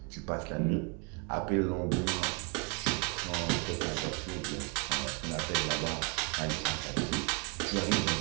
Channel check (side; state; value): left; quieter; 33.5 dB